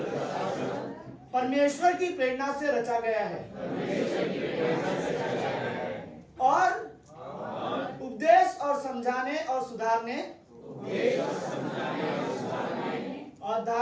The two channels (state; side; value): identical; both; correlation 1.00